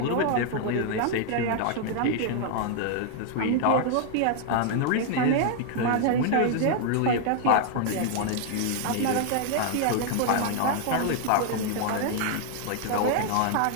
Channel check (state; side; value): different; both; correlation 0.00